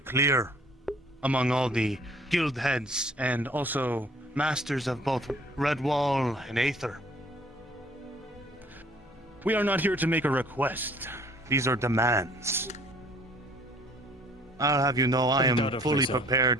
among all the guild heads and also masters of both Redwall and Aether. We are not here to make a request. These are demands. I'll have you know I am fully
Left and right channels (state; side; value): normal; both; correlation 0.56